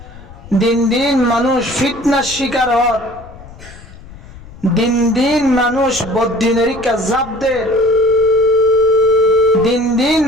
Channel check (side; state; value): left; noise; rumble, 19 dB below the sound